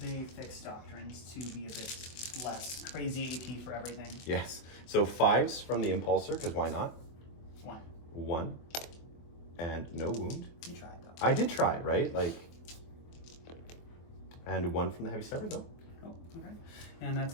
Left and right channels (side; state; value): right; late; 24 ms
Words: fix doctrines to be a bit less crazy AP for everything. Yes. So 5s from the Impulsor, because why not? 1. 1. And no wound. You tried though. I did try, right? Like, and 1 from the Heavy Stepper though. Oh, okay. And